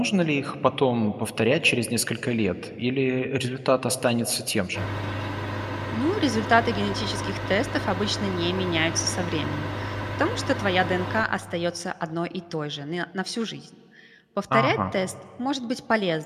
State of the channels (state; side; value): identical; both; correlation 1.00